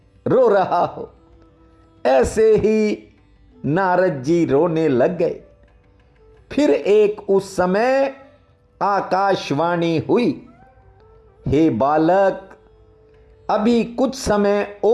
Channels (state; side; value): identical; both; correlation 1.00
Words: रो रहा हो। ऐसे ही नारद जी रोने लग गए। फिर एक उस समय आकाशवाणी हुई, हे बालक, अभी कुछ समय